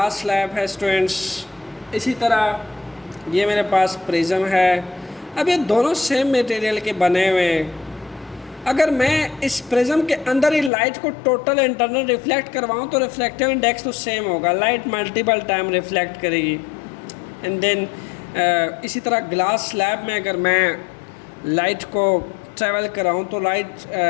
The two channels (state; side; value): drops out; right; at 10.7 s